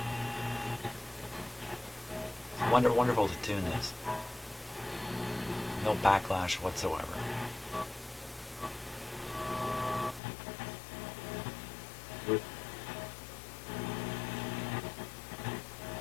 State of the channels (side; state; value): right; drops out; at 10.2 s